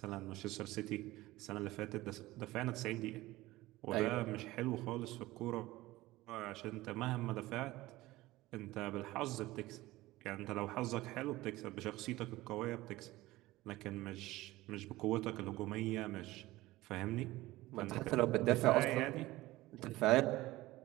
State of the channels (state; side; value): quieter; left; 18.2 dB